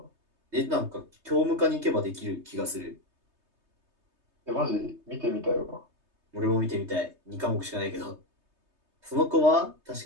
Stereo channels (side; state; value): left; late; 3.2 ms